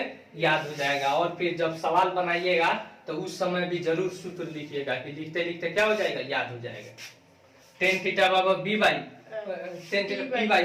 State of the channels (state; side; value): identical; both; correlation 1.00